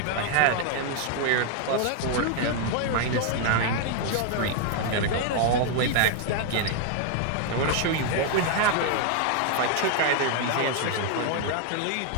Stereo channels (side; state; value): both; different; correlation 0.00